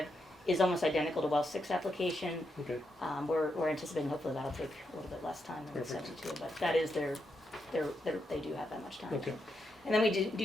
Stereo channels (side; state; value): both; normal; correlation 0.83